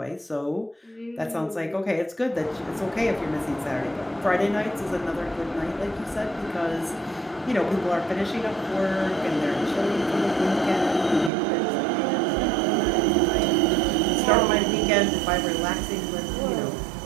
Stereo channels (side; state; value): left; drops out; at 11.3 s